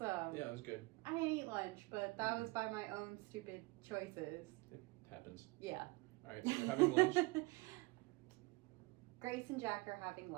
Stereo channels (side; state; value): left; quieter; 24.2 dB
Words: Yeah, it was good. I didn't eat lunch, but that was by my own stupid choices. It happens. Yeah. All right, so we're having lunch. Grace and Jack are having